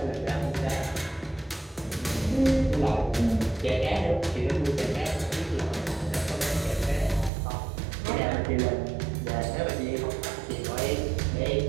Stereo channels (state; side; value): drops out; left; at 7.3 s